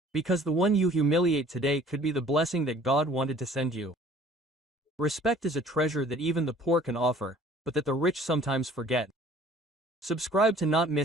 Because the one you humiliate today could be the blessing that God wanted to send you. Respect is a treasure that even the poor can offer, but that the rich sometimes forget. Subscribe to not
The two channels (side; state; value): both; normal; correlation 0.52